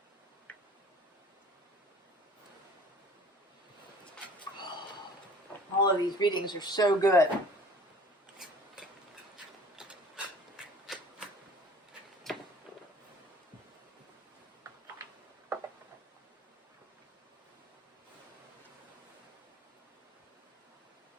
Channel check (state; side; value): normal; both; correlation 0.48